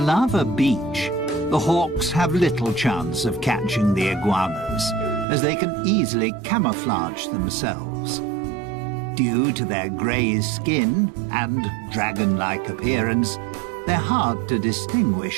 beach, the hawks have little chance of catching the iguanas, as they can easily camouflage themselves. Due to their grey skin and dragon-like appearance, they're hard to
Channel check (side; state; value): left; drops out; at 5.2 s